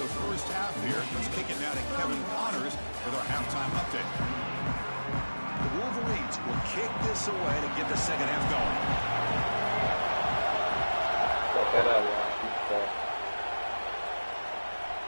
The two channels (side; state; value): both; inverted; correlation -1.00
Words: first half here. Let's kick it now to Kevin Connors with our halftime update. The Wolverines will kick this away to get the second half going.